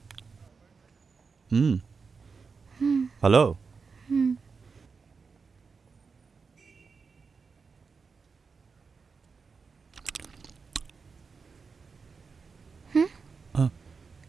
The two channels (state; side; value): quieter; left; 5.1 dB